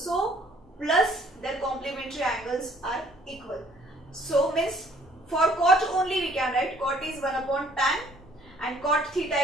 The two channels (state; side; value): normal; both; correlation 0.60